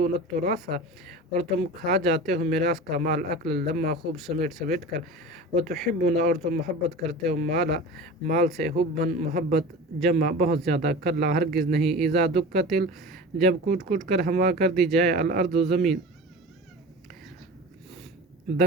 التراث اور تم کھا جاتے ہو میراث کا مال اکل لما خوب سمیٹ سمیٹ کر وتحبون اور تم محبت کرتے ہو مال سے حبن محبت جمع بہت زیادہ کلا ہرگز نہیں اذا دکت جب کوٹ کوٹ کر ہوا کر دی جائے الارض زمین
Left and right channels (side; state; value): both; normal; correlation 0.34